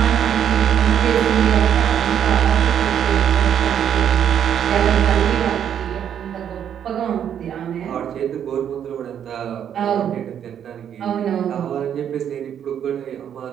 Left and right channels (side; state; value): left; quieter; 9.1 dB